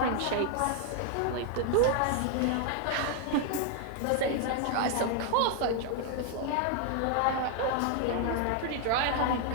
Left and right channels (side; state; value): both; different; correlation 0.00